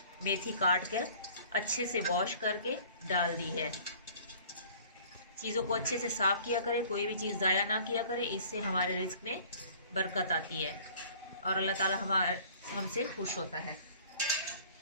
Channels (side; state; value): both; inverted; correlation -0.50